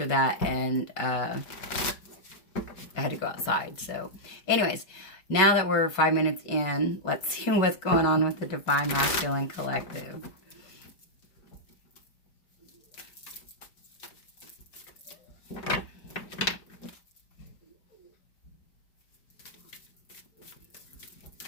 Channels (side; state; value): right; late; 5.3 ms